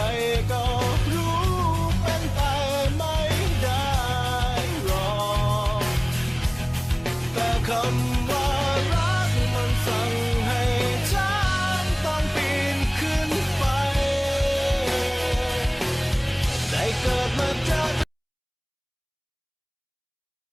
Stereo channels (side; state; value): both; identical; correlation 1.00